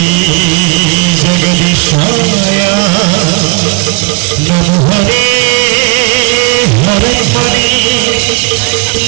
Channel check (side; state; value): left; quieter; 31.8 dB